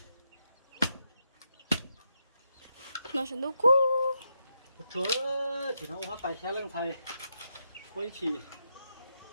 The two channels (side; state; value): both; inverted; correlation -0.83